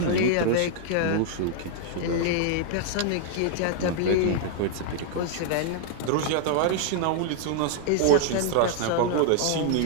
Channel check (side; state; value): both; different; correlation -0.01